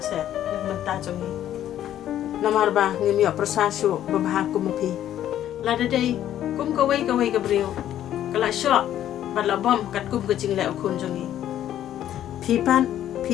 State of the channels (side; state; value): right; quieter; 11.6 dB